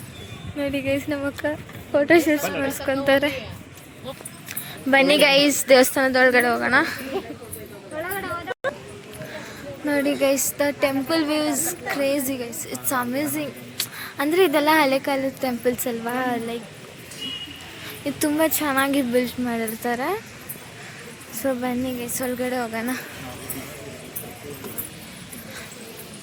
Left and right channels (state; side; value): identical; both; correlation 1.00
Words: ನೋಡಿ ಗೈಸ್. ನಮ್ಮ ಅಕ್ಕ ಫೋಟೋ ಶೂಟ್ಸ್ ಮಾಡಿಸ್ಕೊಂತಾರೆ. ಬನ್ನಿ ಗೈಸ್, ದೇವಸ್ಥಾನದೊಳಗಡೆ ಹೋಗೋಣ. ನೋಡಿ guys, the temple view is crazy guys. It's amazing. ಅಂದರೆ ಇದೆಲ್ಲ ಹಳೆ ಕಾಲದ ಟೆಂಪಲ್ಸ್ ಅಲ್ವಾ, ಲೈಕ್ ಇದು ತುಂಬ ಚೆನ್ನಾಗಿ ಬಿಲ್ಡ್ ಮಾಡಿರ್ತಾರೆ. ಸೊ ಬನ್ನಿ ಗೈಸ್, ಒಳಗಡೆ ಹೋಗೋಣ.